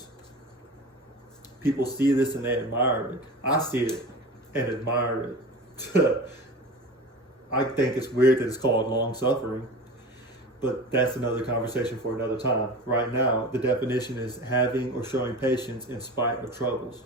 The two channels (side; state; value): both; normal; correlation 0.33